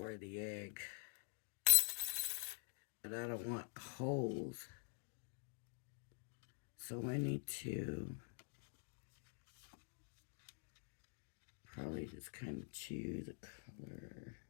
the egg. But I don't want holes. So I need to probably just kind of choose a color,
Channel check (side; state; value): right; silent; digital silence